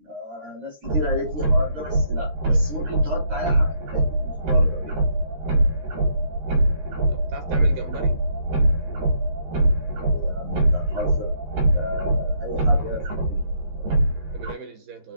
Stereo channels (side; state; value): left; late; 13 ms